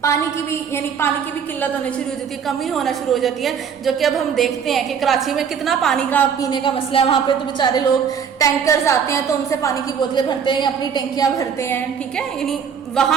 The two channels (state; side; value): quieter; left; 7.2 dB